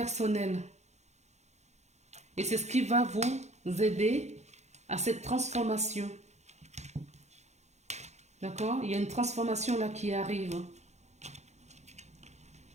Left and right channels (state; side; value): late; left; 0.33 ms